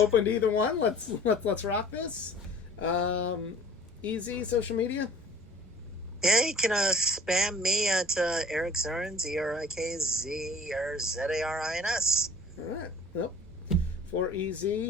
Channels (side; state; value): both; normal; correlation 0.48